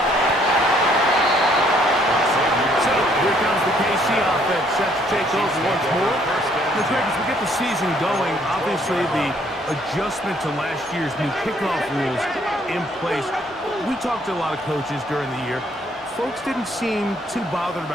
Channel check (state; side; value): normal; both; correlation 0.65